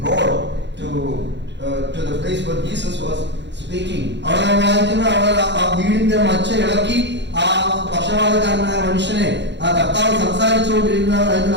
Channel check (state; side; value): late; left; 0.52 ms